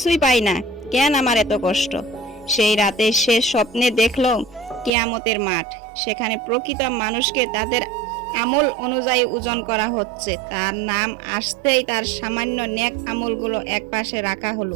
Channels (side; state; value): left; drops out; at 4.9 s